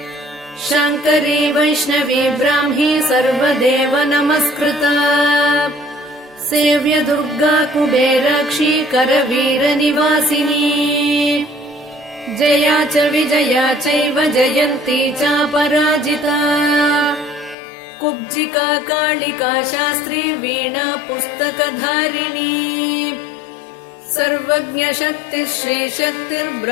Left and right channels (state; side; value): drops out; right; at 17.6 s